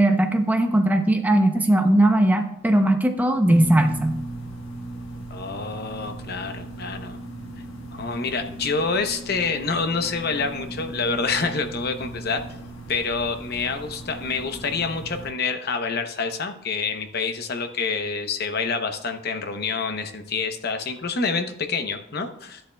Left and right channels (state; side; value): normal; both; correlation 0.60